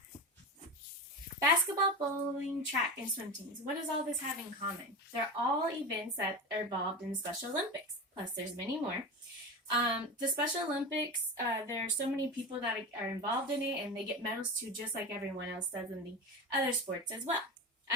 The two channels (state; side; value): normal; both; correlation 0.25